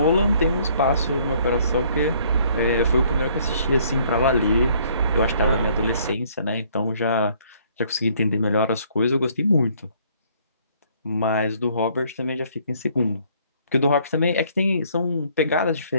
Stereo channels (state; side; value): inverted; both; correlation -0.62